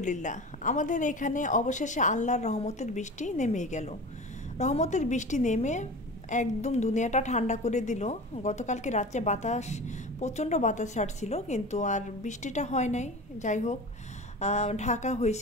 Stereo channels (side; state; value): both; normal; correlation 0.33